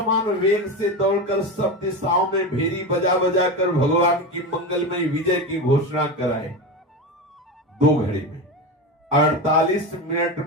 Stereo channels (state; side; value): normal; both; correlation 0.21